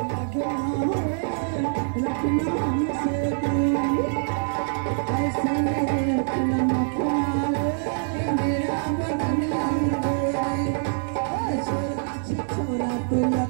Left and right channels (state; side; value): silent; left; digital silence